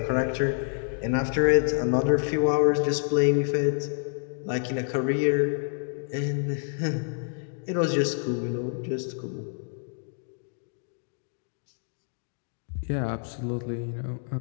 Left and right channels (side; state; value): right; silent; 57 dB below the other